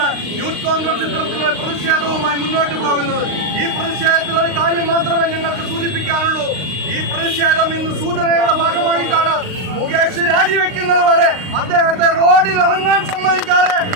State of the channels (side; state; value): left; late; 38 ms